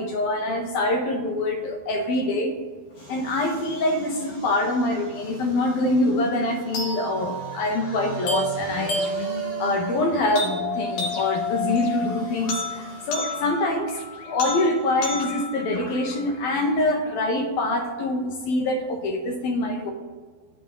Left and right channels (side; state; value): right; late; 12 ms